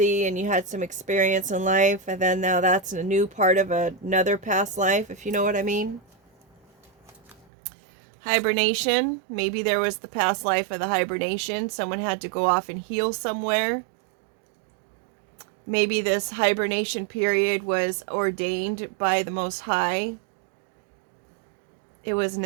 and you had some experience in life, and then now that's a new part of another past life, if you know what I mean. Hibernation, maybe there was the past life of the hibernation. Someone had to go off and heal somewhere. Maybe this hibernation period was ordained by the Most High. It was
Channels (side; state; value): left; drops out; at 7.5 s